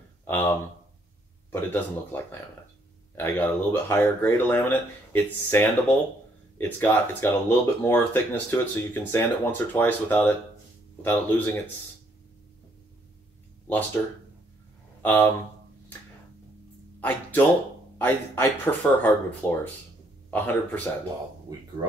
but it doesn't look like laminate. I got a little bit higher grade of laminate. It's sandable. It's got a little bit more thickness to it, so you can sand it once or twice without it losing its luster. I prefer hardwood floors, 100%. Well, we grew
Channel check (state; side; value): normal; both; correlation 0.69